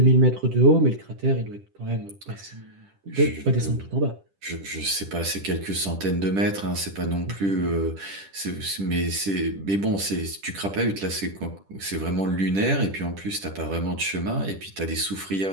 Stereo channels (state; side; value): late; left; 10 ms